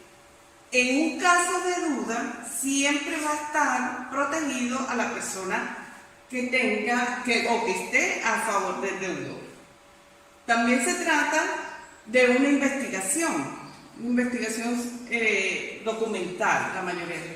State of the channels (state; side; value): identical; both; correlation 1.00